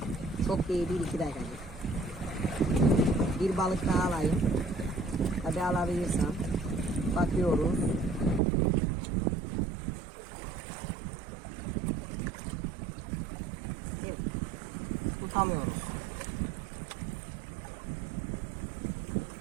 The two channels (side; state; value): left; drops out; at 8.4 s